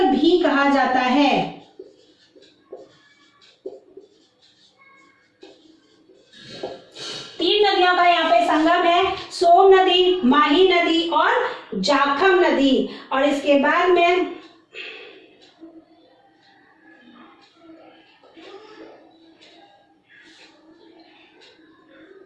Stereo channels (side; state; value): both; identical; correlation 1.00